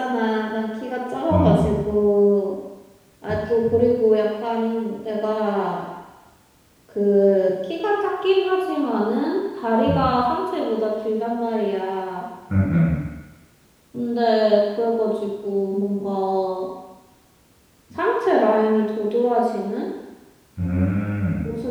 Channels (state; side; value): identical; both; correlation 1.00